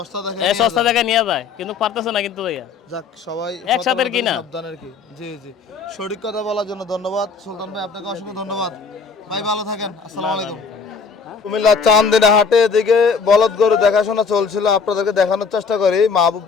দেখে এই সস্তা জায়গায় নিয়ে যায়, কিন্তু পারতেছে না কিন্তু ভাইয়া। যাক সবাই একসাথে সতর্ক কিনা। সাবধানের কি। জি জি সঠিক কথা বলার জন্য ধন্যবাদ সুলতান ভাই, আপনাকে অসংখ্য ধন্যবাদ ভাই, ভালো থাকেন। আসসালামু আলাইকুম। কুমিল্লা চান্দিনা হাটে এদিকে বলদ গরু দেখাশোনা চলছিল, আপনাদেরকে দেখানোর চেষ্টা করি। মাহবুব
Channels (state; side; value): quieter; right; 5.3 dB